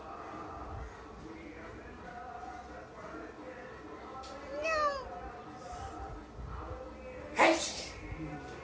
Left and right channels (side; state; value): both; identical; correlation 1.00